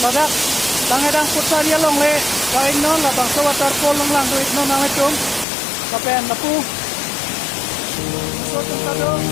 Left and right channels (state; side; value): drops out; right; at 5.5 s